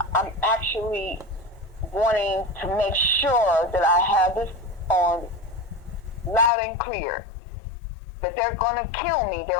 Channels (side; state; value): right; drops out; at 6.5 s